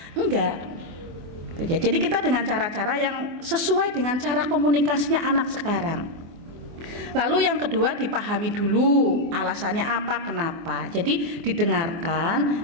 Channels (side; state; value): left; late; 24 ms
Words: enggak. Jadi kita dengan cara-cara yang sesuai dengan cara komunikasinya anak sekarang. Lalu yang kedua, dipahami dulu alasannya apa, kenapa. Jadi